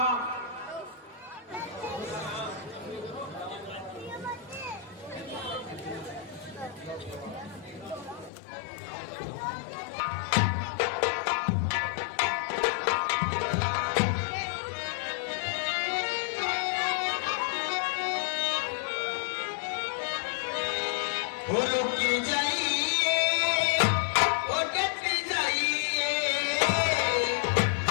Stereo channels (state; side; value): drops out; right; at 8.3 s